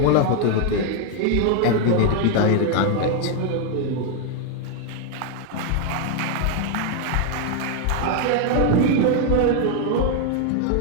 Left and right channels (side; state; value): both; different; correlation 0.00